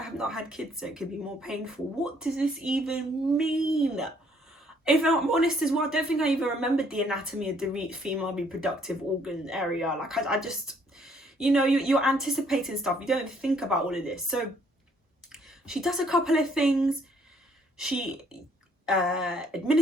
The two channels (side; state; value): both; normal; correlation 0.65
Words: have not had kids, so it could be more painful. What does this even mean? If I'm honest as well, I don't think I even remembered the anatomy of the female reproductive organ area. Like I just, you know, you're anticipating stuff. You don't think about all of this. So she does a couple of things. She